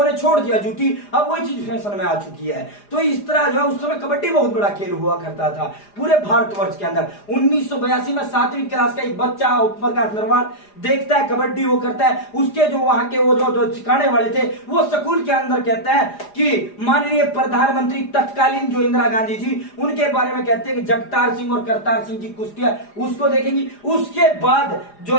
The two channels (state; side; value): late; right; 4.9 ms